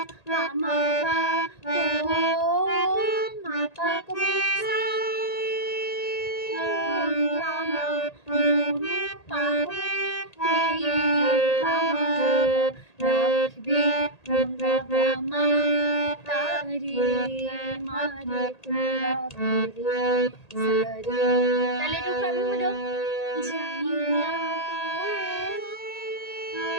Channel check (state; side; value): late; right; 1.8 ms